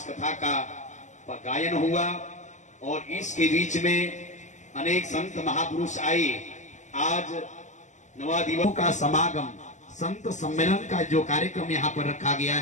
कथा का गायन हुआ और इसके बीच में अनेक संत महापुरुष आए। आज 9 दिवसों का समागम, संत सम्मेलन का जो कार्यक्रम यहाँ पर रखा गया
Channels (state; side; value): late; right; 0.34 ms